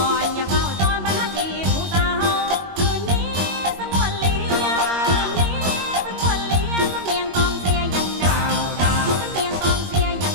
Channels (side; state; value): left; late; 21 ms